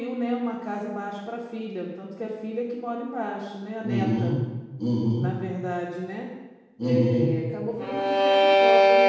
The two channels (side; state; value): both; identical; correlation 1.00